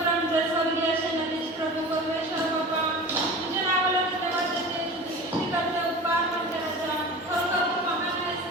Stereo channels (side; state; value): both; normal; correlation 0.35